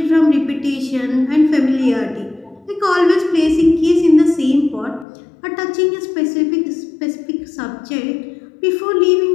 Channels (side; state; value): right; drops out; at 5.1 s